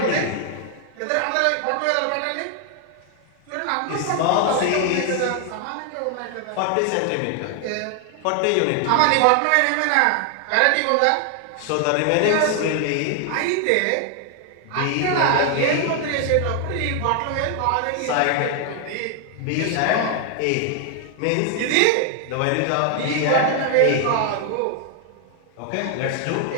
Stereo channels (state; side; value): different; both; correlation 0.00